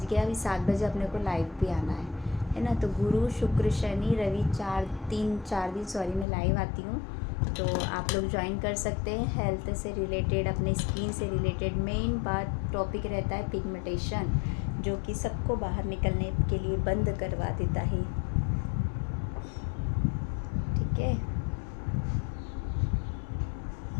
गया, अभी 7 बजे अपने को लाइव भी आना है ना। तो गुरु शुक्र शनि रवि 4 दिन मैं लाइव आती हूँ। तो आप लोग ज्वाइन कर सकते हैं। हेल्थ से रिलेटेड, अपने स्किन से रिलेटेड मेन बात टॉपिक रहता है पिगमेंटेशन, जो कि सबको बाहर निकलने के लिए बंद करवा देता है। ठीक है,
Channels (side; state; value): right; drops out; at 6.2 s